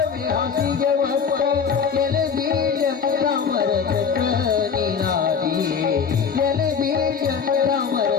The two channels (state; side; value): quieter; right; 6.4 dB